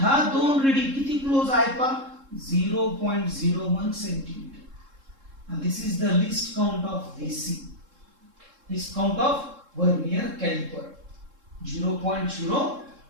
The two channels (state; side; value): late; left; 3.7 ms